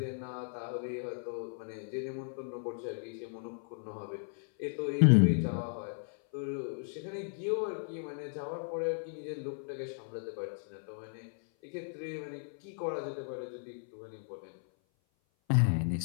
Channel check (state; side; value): silent; right; 54 dB below the other